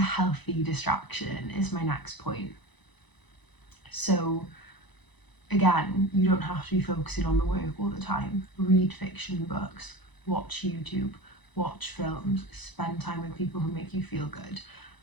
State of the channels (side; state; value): right; late; 1.0 ms